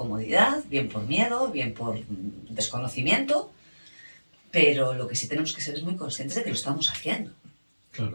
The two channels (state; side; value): inverted; both; correlation -1.00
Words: bien por miedo, bien por desconocimiento, pero lo que sí tenemos que ser es muy conscientes de que lo estamos haciendo. Claro,